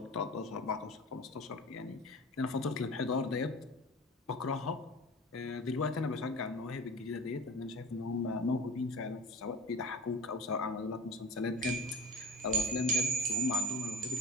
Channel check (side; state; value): both; normal; correlation 0.33